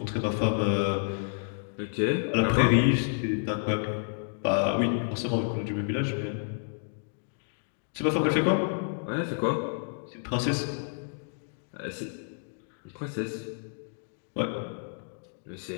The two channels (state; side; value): silent; right; digital silence